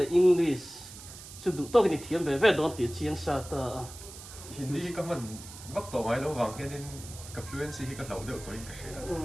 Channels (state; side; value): noise; right; hiss, 15 dB below the sound